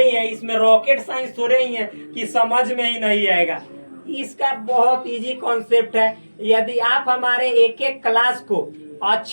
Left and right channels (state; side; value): inverted; both; correlation -1.00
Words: ही है, इसमें रॉकेट साइंस थोड़े ही है कि समझ में ही नहीं आएगा। इसका बहुत इजी कॉन्सेप्ट है। यदि आप हमारे एक एक क्लास को